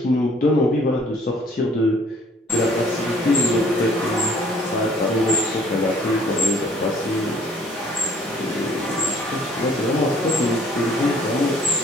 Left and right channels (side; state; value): both; normal; correlation 0.58